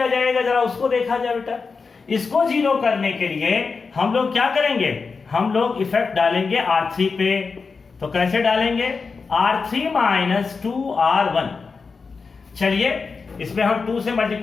जाएगा जरा उसको देखा जाए बेटा। इसको 0 करने के लिए हम लोग क्या करेंगे, हम लोग इफेक्ट डालेंगे R3 पे। तो कैसे डालेंगे R3 - 2R1। चलिए इसमें हम 2 से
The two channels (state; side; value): quieter; right; 4.8 dB